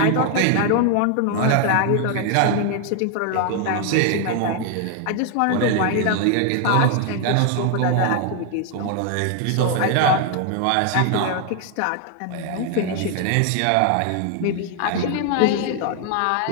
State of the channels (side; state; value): both; different; correlation 0.00